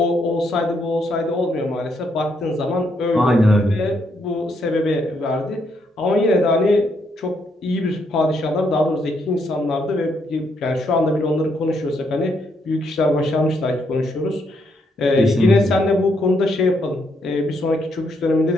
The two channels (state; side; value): normal; both; correlation 0.75